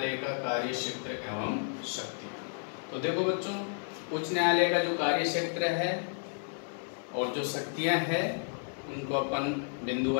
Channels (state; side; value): silent; right; 56 dB below the other